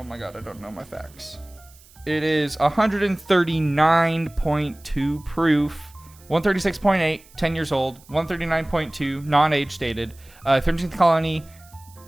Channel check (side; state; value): right; noise; hiss, 26 dB below the sound